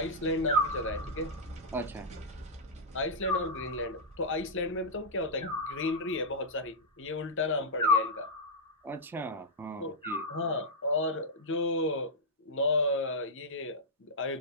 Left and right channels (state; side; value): normal; both; correlation -0.08